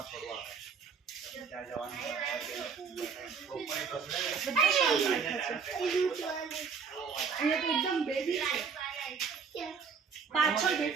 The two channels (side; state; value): left; quieter; 5.9 dB